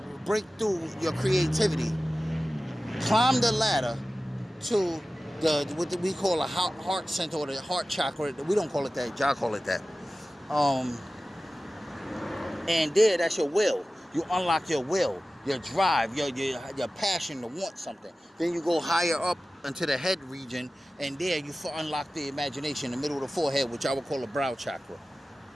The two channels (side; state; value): both; normal; correlation 0.96